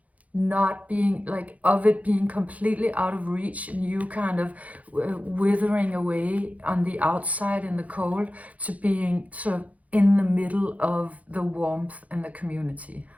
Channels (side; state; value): left; late; 0.070 ms